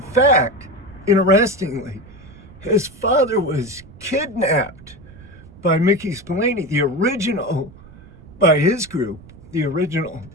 fact, interestingly, his father was kidnapped by Mickey Spillane, by his group, the original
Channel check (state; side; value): noise; right; rumble, 20 dB below the sound